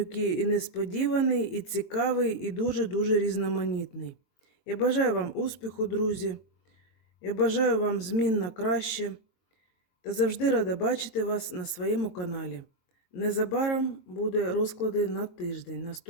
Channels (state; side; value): late; right; 22 ms